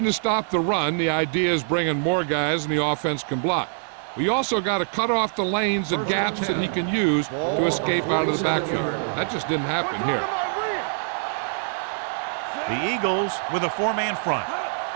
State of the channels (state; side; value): silent; left; digital silence